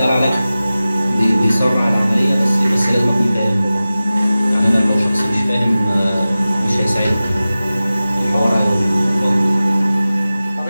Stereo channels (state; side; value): inverted; both; correlation -0.96